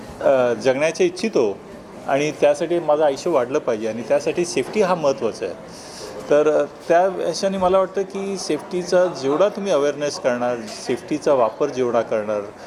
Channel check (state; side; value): identical; both; correlation 1.00